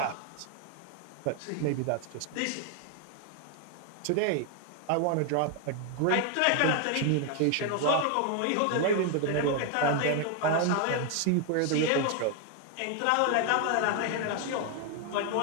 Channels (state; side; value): different; both; correlation 0.00